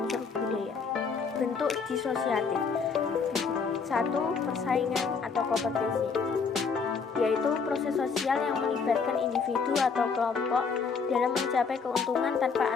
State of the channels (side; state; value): right; quieter; 5.4 dB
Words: budaya. Bentuk disosiatif. 1. Persaingan atau kompetisi, yaitu proses sosial yang melibatkan individu atau kelompok dalam mencapai keuntungan tanpa